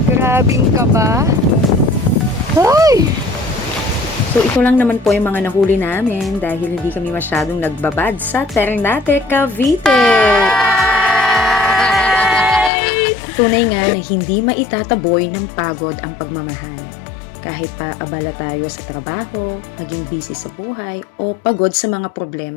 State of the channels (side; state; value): right; drops out; at 12.7 s